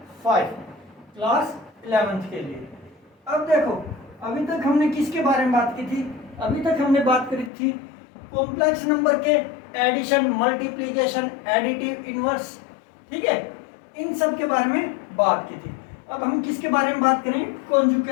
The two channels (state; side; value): drops out; right; at 7.5 s